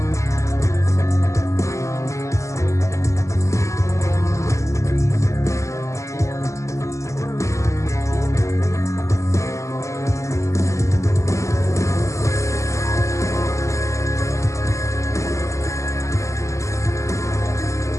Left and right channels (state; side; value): late; right; 0.15 ms